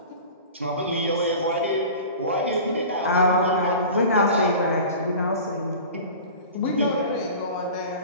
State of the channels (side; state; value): both; inverted; correlation -0.37